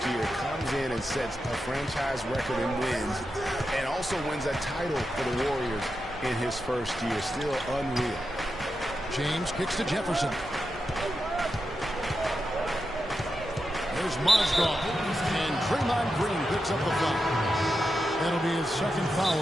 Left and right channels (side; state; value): both; normal; correlation 0.88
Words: year. Comes in and sets a franchise record in wins and also wins a title for the Warriors in his first year. Still unreal. James kicks to Jefferson. There's Mozgov. And Draymond Green picks up the foul. That'll be his second foul